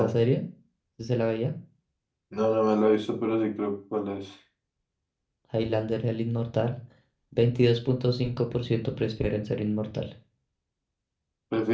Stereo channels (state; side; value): identical; both; correlation 1.00